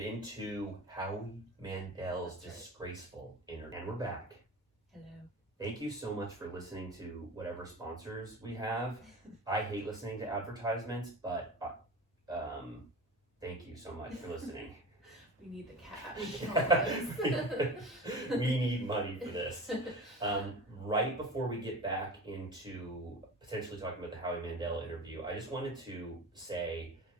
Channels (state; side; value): normal; both; correlation 0.33